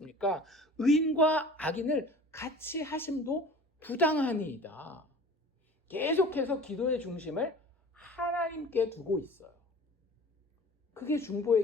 의인과 악인을 같이 하심도 부당하니이다. 계속해서 기도의 중심을 하나님께 두고 있어요. 그게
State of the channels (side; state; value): both; normal; correlation 0.42